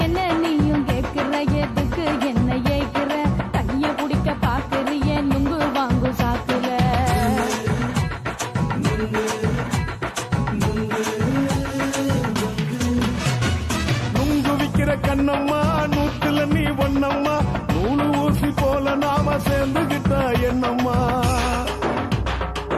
என்ன நீயும் கேக்குற எதுக்கு என்ன ஏக்குற கைய குடிக்க பாக்குறிய நுங்கு வாங்கு சாக்குல நுங்கு விக்கிற கண்ணம்மா நூத்துல நீ ஒன்னம்மா நூலு ஊசி போல நாம சேர்ந்துகிட்டா என்னம்மா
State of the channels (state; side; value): identical; both; correlation 1.00